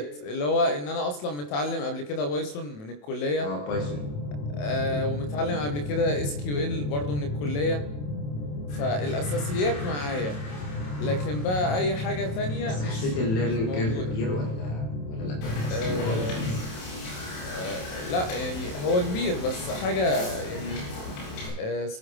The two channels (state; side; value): late; right; 27 ms